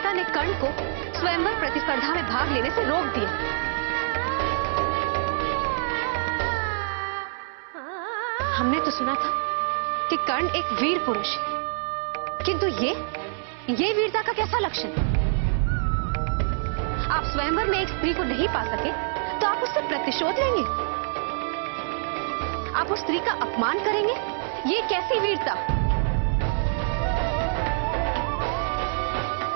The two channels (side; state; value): left; silent; 61 dB below the other